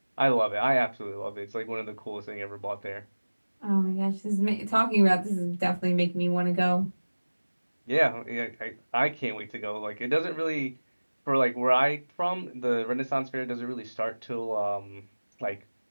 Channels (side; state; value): both; inverted; correlation -1.00